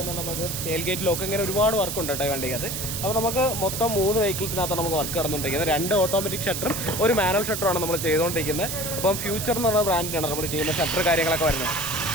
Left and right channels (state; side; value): noise; right; hiss, 4 dB below the sound